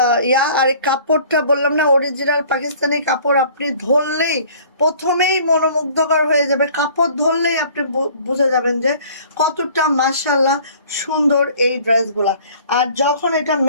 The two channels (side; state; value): both; inverted; correlation -0.51